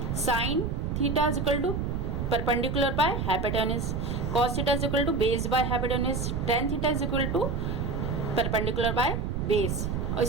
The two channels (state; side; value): noise; right; rumble, 2 dB below the sound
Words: sine theta is equal to perpendicular by hypotenuse, cos theta is equal to base by hypotenuse, tan theta is equal to perpendicular by base. और